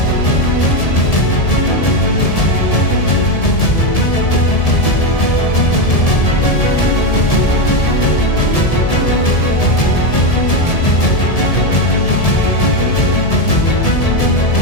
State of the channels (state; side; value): late; right; 1.7 ms